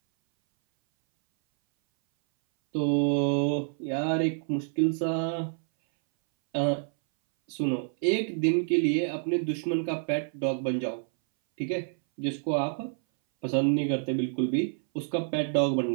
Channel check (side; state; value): left; silent; 59 dB below the other